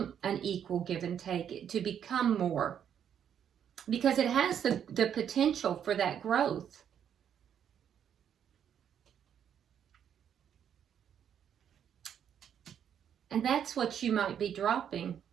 an equal give and take, to become more, because it has the potential for that growth. And that's what you might be dropping.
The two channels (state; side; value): quieter; left; 8.9 dB